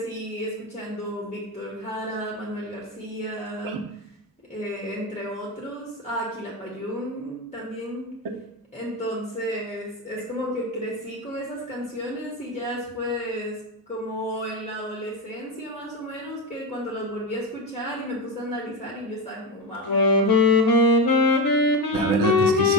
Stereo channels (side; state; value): both; normal; correlation 0.16